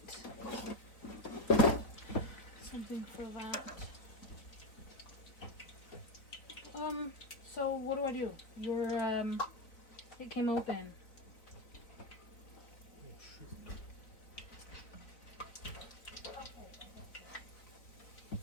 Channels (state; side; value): late; right; 3.9 ms